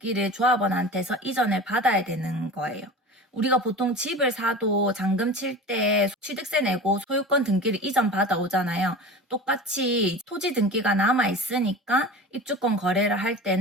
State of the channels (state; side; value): normal; both; correlation 0.34